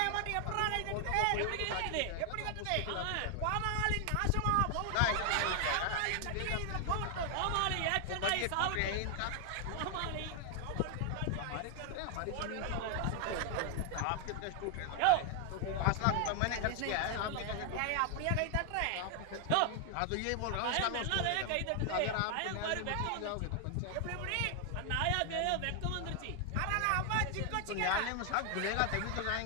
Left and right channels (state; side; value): different; both; correlation 0.00